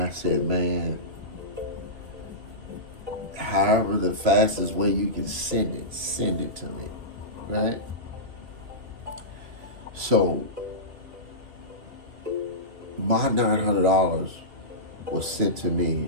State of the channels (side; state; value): left; late; 2.7 ms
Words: said, "Man, however the fastest way you can send it to me," right? So my $900 was sent to